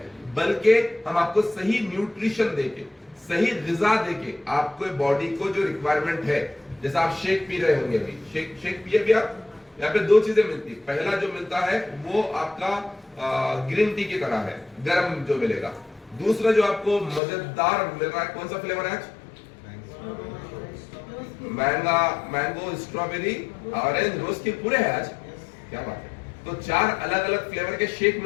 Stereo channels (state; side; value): drops out; right; at 17.2 s